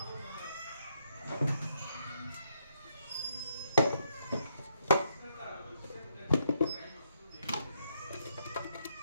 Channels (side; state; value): both; inverted; correlation -0.75